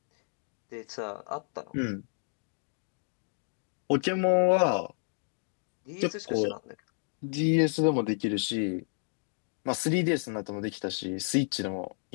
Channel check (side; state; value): right; silent; digital silence